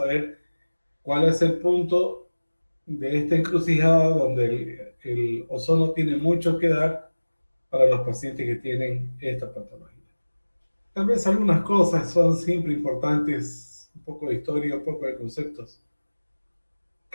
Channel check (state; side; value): inverted; both; correlation -1.00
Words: cuál es el punto de esta encrucijada donde el ozono tiene mucho que dar para los pacientes que tienen esta patología. Tal vez algunas cosas son siempre importantes, un poco de historia, un poco de conceptos.